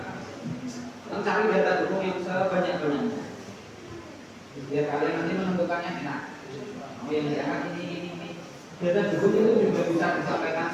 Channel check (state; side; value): identical; both; correlation 1.00